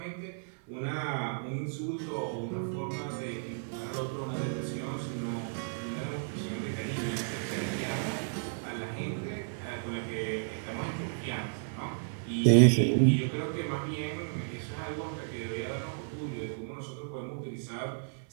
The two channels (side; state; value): left; silent; 56 dB below the other